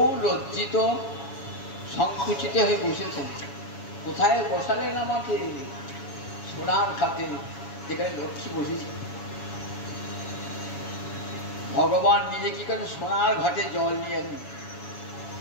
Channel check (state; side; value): late; right; 7.2 ms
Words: লজ্জিত, সংকুচিত হয়ে বসেছেন। কোথায় বসালেন আমাকে? সোনার খাতে, যেখানে লক্ষ্মী বসেছে। ভগবান নিজে কি করেন? সোনার ঘাটে জল নিয়ে এলেন।